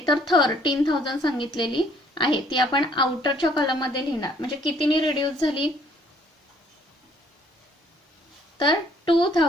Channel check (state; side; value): normal; both; correlation 0.62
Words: तर 13,000 सांगितलेली आहे. ती आपण आउटरच्या कॉलम मध्ये लिहिणार. म्हणजे कितीनी रिड्यूस झाली, तर